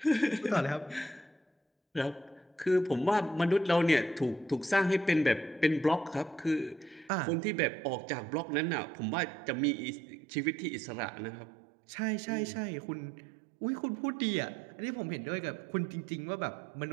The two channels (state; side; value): drops out; left; at 7.1 s